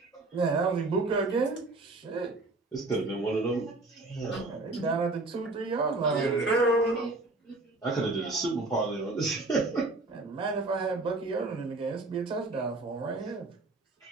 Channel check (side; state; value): left; quieter; 3.1 dB